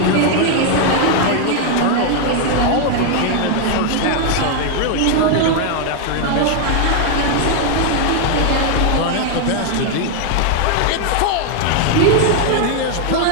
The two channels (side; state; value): both; different; correlation 0.01